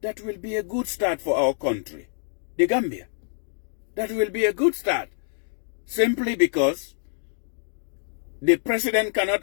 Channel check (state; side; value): silent; right; digital silence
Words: that will be a good start for our country, the Gambia. That will be a good start. Simply because the president